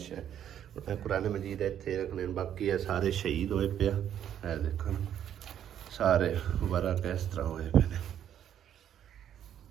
ਕੁਰਾਨ ਮਜੀਦ ਇੱਥੇ ਰੱਖਣੇ। ਬਾਕੀ ਇਹ ਸਾਰੇ ਸ਼ਹੀਦ ਹੋਏ ਪਿਆ, ਇਹ ਦੇਖੋ ਸਾਰੇ ਵਰਾ ਕਿਸ ਤਰ੍ਹਾਂ ਹੋਏ ਪਏ ਨੇ।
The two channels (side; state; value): left; quieter; 10.0 dB